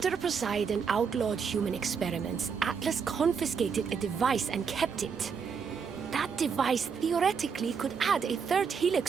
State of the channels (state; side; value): quieter; left; 6.2 dB